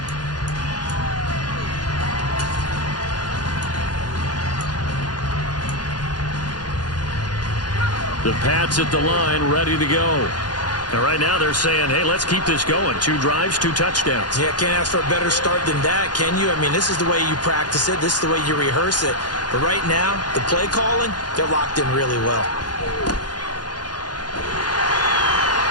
The Pats at the line, ready to go. And right now they're saying, hey, let's keep this going. 2 drives, 2 touchdowns. Yeah, can't ask for a better start than that, can you? I mean, this is the way you practice it. This is the way you rehearse it. But right now, the play calling, they're locked in really well.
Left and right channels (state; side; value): late; right; 0.70 ms